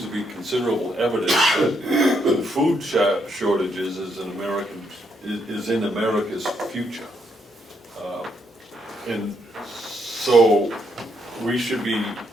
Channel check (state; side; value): normal; both; correlation 0.76